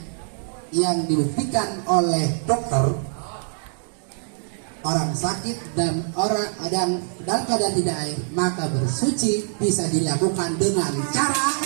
yang dibuktikan oleh dokter, orang sakit dan orang dalam keadaan tidak air, maka bersuci bisa dilakukan dengan cara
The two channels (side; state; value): left; silent; 63 dB below the other